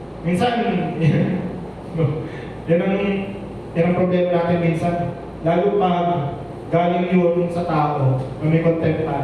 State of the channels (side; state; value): both; identical; correlation 1.00